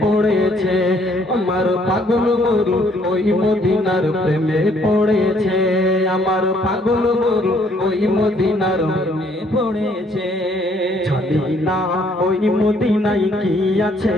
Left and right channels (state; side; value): normal; both; correlation 0.65